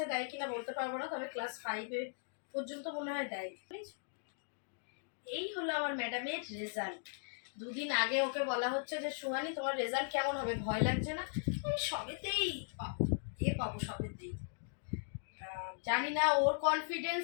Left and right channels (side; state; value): right; silent; digital silence